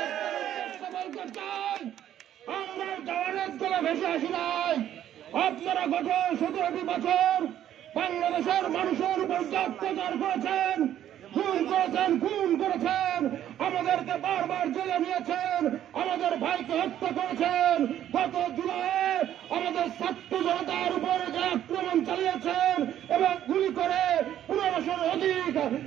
আমরা জওয়ানের দলে ভেসে আসি নাই। আপনারা গত 17টি বছর বাংলাদেশের মানুষের উপর অত্যাচার করেছেন, খুন করেছেন, আমাদেরকে বারবার জেলে নিয়েছেন, আমাদের ভাইকে হত্যা করেছেন। গত জুলাইয়ে আমাদের ছাত্র জনতার উপরে যে আক্রমণ চালিয়েছেন এবং গুলি করে 1500-র অধিক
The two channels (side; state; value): left; quieter; 11.2 dB